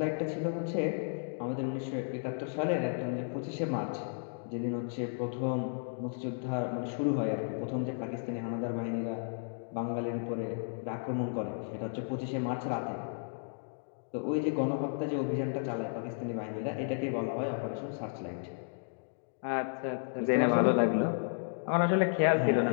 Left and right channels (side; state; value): right; silent; digital silence